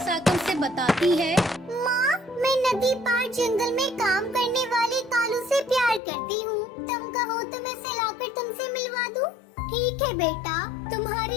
आकर उसे बताती है। माँ, मैं नदी पार जंगल में काम करने वाले कालू से प्यार करती हूँ। तुम कहो तो मैं उसे लाकर तुमसे मिलवा दूँ। ठीक है बेटा,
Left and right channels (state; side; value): drops out; right; at 6.0 s